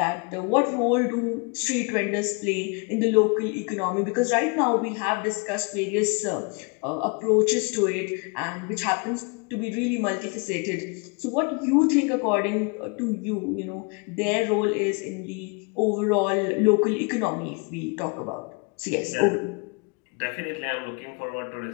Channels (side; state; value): right; quieter; 32.3 dB